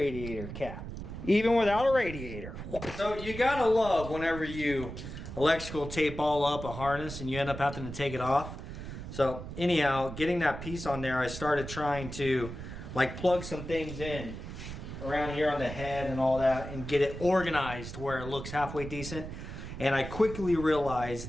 cap, even without a radiator. So you gotta love whenever you electrical tape all up a harness and you end up having to take it off. So anyhow, getting that piece on there, I started trying to like plug some things in around here on the head and all that and get it organized where it looks halfway decent. And I quickly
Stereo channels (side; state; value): right; noise; rumble, 9 dB below the sound